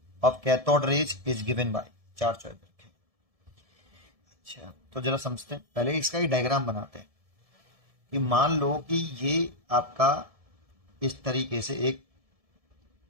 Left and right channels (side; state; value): left; late; 1.7 ms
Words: of cathode rays is given by, charge choice रखें। अच्छा, तो जरा समझते हैं, पहले इसका ही डायग्राम बनाते हैं कि मान लो कि ये आपका इस तरीके से एक